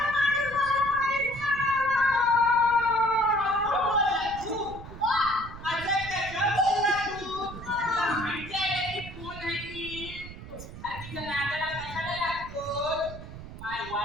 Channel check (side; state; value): right; noise; rumble, 13 dB below the sound